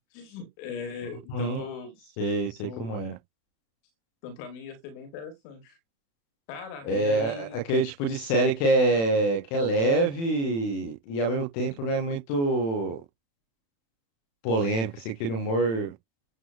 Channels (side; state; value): right; late; 36 ms